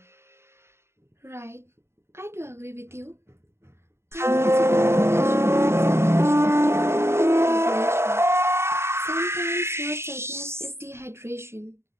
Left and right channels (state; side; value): late; left; 0.12 ms